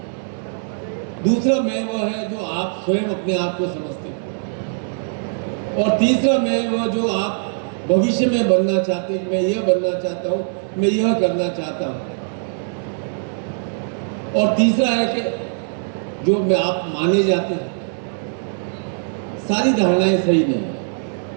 दूसरा मैं वह है जो आप स्वयं अपने आप को समझते हैं। और तीसरा मैं वह जो आप भविष्य में बनना चाहते हैं, मैं यह बनना चाहता हूँ, मैं यह करना चाहता हूँ। और तीसरा है कि जो मैं आप माने जाते हैं। सारी धारणाएं सही नहीं है।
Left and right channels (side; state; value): left; silent; digital silence